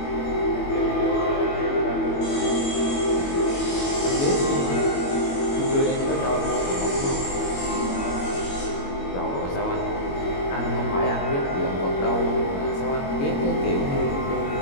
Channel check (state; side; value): late; right; 22 ms